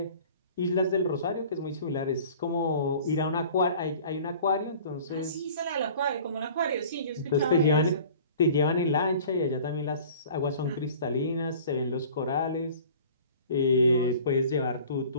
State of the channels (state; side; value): inverted; both; correlation -0.46